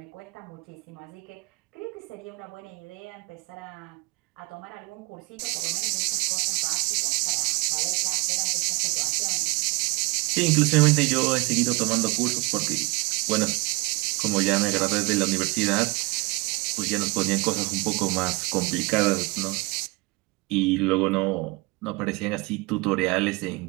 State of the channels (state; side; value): quieter; left; 26.0 dB